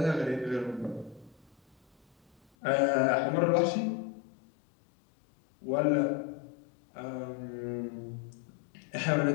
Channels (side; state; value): right; drops out; at 2.4 s